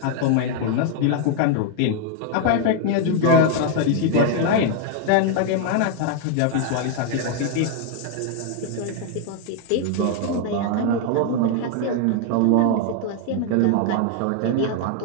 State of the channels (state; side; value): different; both; correlation 0.00